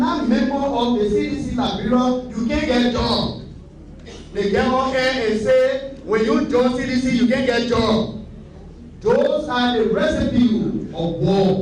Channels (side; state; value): both; identical; correlation 1.00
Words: member of the CDC Liberia, you can't get job. They get on air and say, when you join CDC, you can't get job. Those are the recipe of